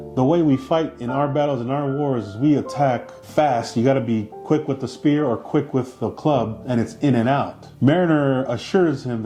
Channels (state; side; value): identical; both; correlation 1.00